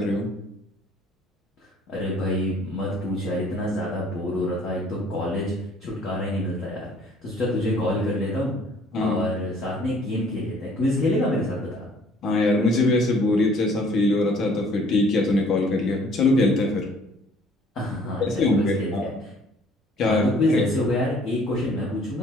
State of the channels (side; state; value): both; normal; correlation 0.57